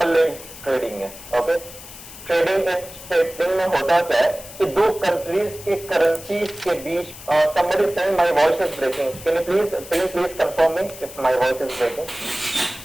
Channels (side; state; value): left; noise; hiss, 16 dB below the sound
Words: ट्रेडिंग है। ओके, ट्रेडिंग में होता क्या है कि दो कंट्रीज के करेंसीज के बीच somebody is saying my voice is breaking. Can you please confirm me if my voice is breaking?